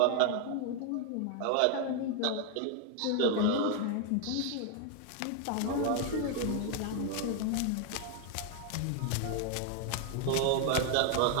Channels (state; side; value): different; both; correlation 0.00